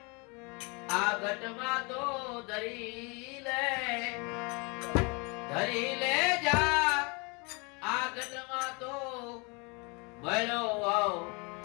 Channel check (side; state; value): right; quieter; 30.3 dB